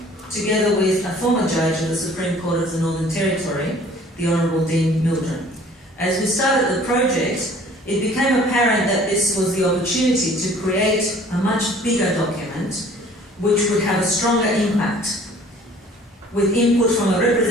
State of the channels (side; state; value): both; normal; correlation 0.52